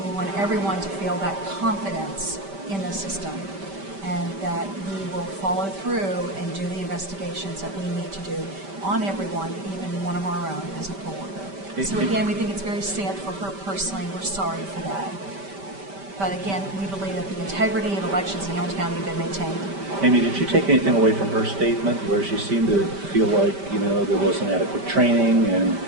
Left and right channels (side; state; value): left; late; 5.1 ms